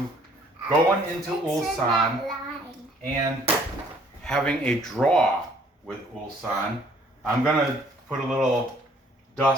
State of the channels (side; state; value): both; normal; correlation 0.60